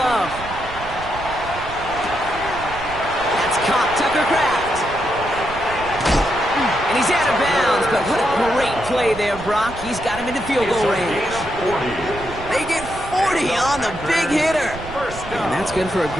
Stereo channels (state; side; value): noise; right; rumble, 13 dB below the sound